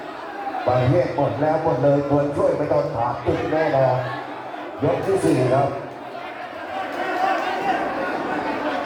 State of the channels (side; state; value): both; identical; correlation 1.00